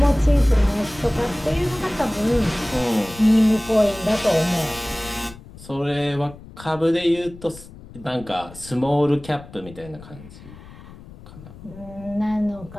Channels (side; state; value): left; noise; rumble, 18 dB below the sound